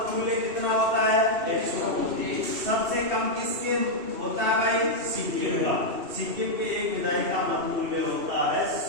कितना होता है? 129। सबसे कम किसके होता है भाई? सिक्किम का। सिक्किम के एक विधायक का मतमूल्य होता है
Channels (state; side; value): late; left; 2.7 ms